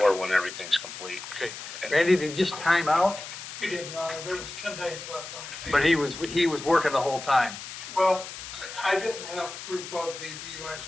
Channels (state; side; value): noise; left; hiss, 11 dB below the sound